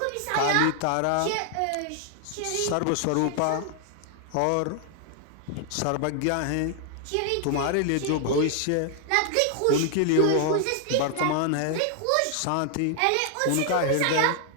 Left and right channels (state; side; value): different; both; correlation 0.00